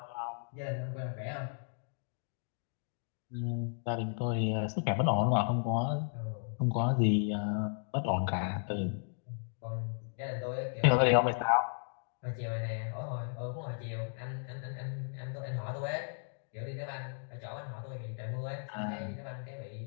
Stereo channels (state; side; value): silent; right; 54 dB below the other